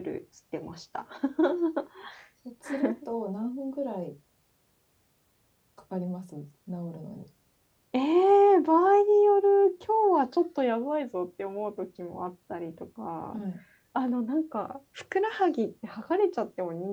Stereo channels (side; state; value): both; identical; correlation 1.00